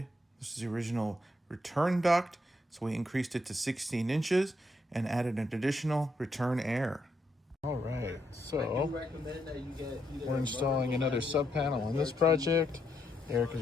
This is the original return duct. So we increased it to 16 inches and added an additional return air. All right, so we're installing another sub panel on this project. Eric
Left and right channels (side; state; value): both; normal; correlation 0.78